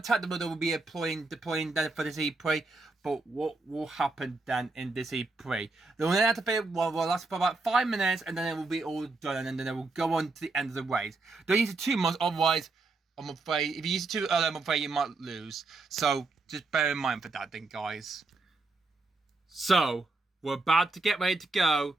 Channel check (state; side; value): quieter; left; 3.4 dB